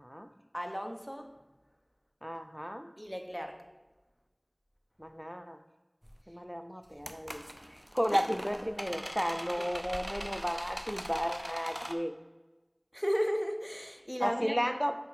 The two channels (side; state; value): both; identical; correlation 1.00